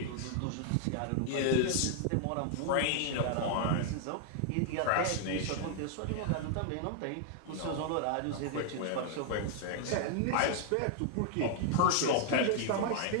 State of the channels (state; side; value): different; both; correlation 0.00